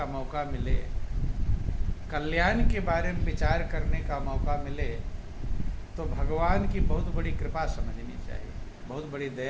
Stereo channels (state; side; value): identical; both; correlation 1.00